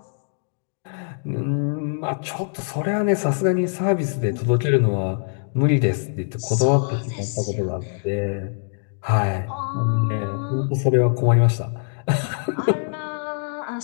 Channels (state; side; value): silent; right; digital silence